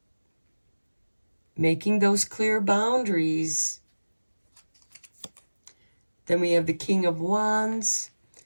making those clear boundaries. Then we have the King of Wands,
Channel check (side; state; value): both; inverted; correlation -1.00